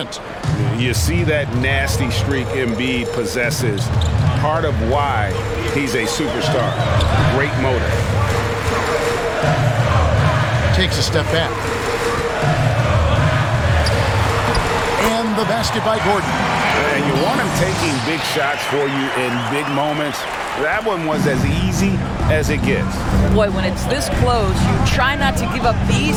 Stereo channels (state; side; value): identical; both; correlation 1.00